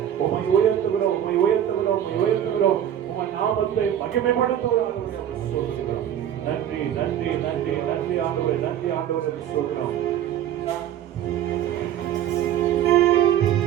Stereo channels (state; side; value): quieter; left; 10.5 dB